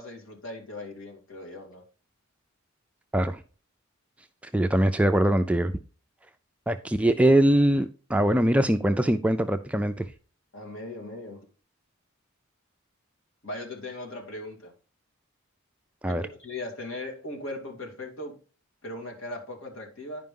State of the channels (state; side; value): normal; both; correlation 0.87